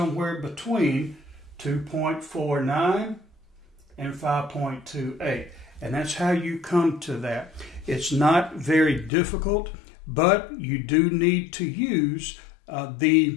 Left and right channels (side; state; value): right; drops out; at 9.1 s